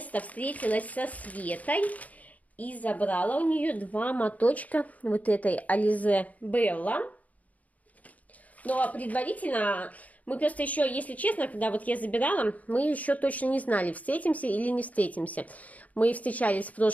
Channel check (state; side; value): late; right; 0.073 ms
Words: встретилась со Светой и забрала у нее 2 моточка вот этой Alize Bella. Но предварительно мы просто еще, если честно, когда вот я забирала, мы еще точно не знали, встретимся или не встретимся. Мы встречались в